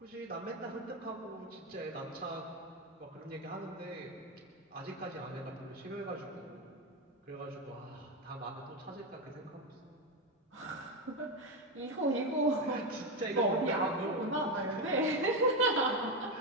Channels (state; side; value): normal; both; correlation 0.11